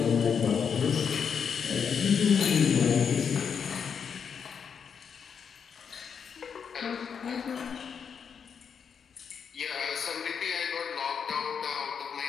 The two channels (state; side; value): quieter; right; 6.8 dB